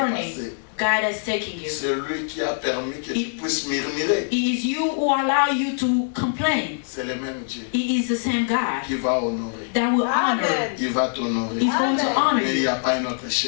passer. God has taken you. C'est lui qui a permis que tu puisses murmurer. It is you who allow you to complain. C'est le même Dieu It is the same God qui va honorer. that will honor. Il va t'honorer. He's going to honor Mais il n'y you. a pas un autre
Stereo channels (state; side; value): silent; right; 63 dB below the other